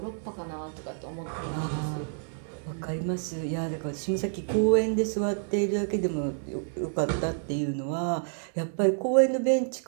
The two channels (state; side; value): silent; left; digital silence